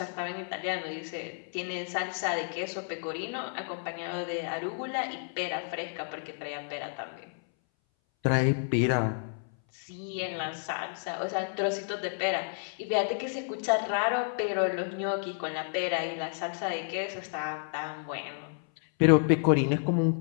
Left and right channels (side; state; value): right; silent; 57 dB below the other